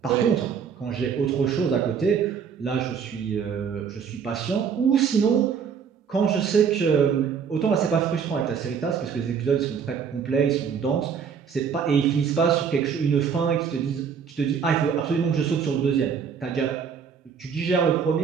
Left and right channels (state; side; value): quieter; left; 6.9 dB